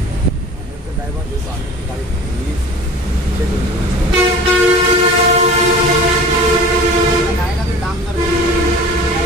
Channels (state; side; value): normal; both; correlation 0.41